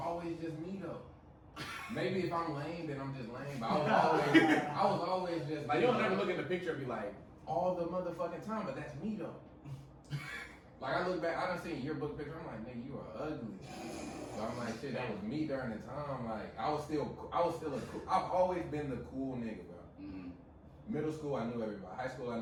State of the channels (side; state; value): both; identical; correlation 1.00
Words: just me though. Maybe if I'm lame, then I'm just lame. But I was always just Like, you don't never look in the picture and be like, all the motherfucking time, but that's me though. Like I look back, I done seen your book picture. I'm like, nigga, you are ugly. So I'm like, shit, that was me during the time. Like I was still a cool. I've always been the cool nigga, bro. Mm-hmm. Middle school, I knew everybody. High school, I